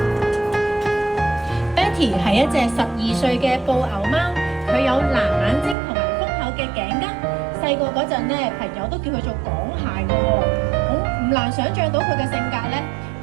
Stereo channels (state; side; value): drops out; left; at 5.8 s